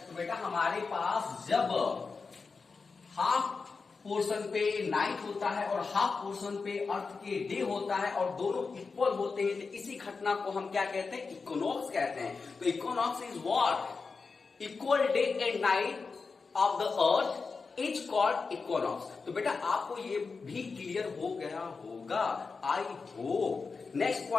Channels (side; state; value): right; quieter; 4.6 dB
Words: बेटा हमारे पास जब हाफ पोर्शन पे नाइट होता है और हाफ पोर्शन पे अर्थ के डे होता है और दोनों इक्वल होते हैं, तो इसी घटना को हम क्या कहते हैं? इक्विनॉक्स कहते हैं। तो equinox is what? Equal day and night of the earth is called equinox. तो बेटा आपको ये भी क्लियर हो गया होगा, I hope. Next